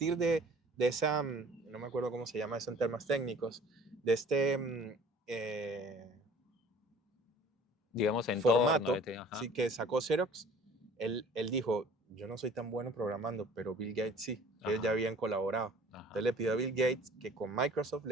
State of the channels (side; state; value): both; normal; correlation 0.50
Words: de esa, no me acuerdo cómo se llama eso en términos técnicos, de este Digamos entorno, formato, este, ajá. ¿sí? Que sacó Xerox, él dijo, yo no soy tan bueno programando, pero Bill Gates sí, ellos ya Ajá. habían colaborado. Entonces Ajá. le pidió a Bill Gates que con Microsoft